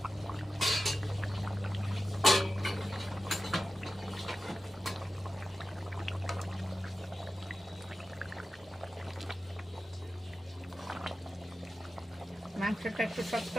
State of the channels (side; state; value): both; normal; correlation 0.93